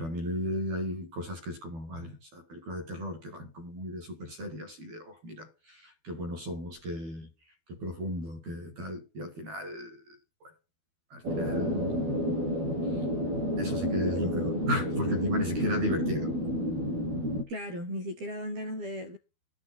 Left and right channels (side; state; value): left; late; 12 ms